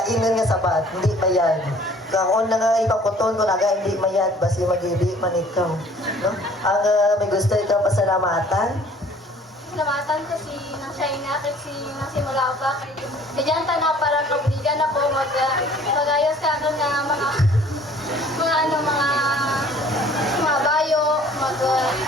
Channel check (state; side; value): normal; both; correlation 0.53